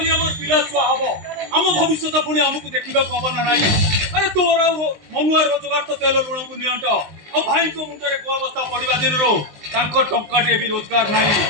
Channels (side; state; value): left; late; 19 ms